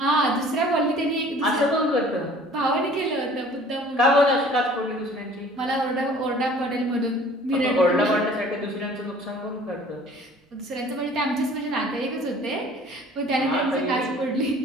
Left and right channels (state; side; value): normal; both; correlation 0.50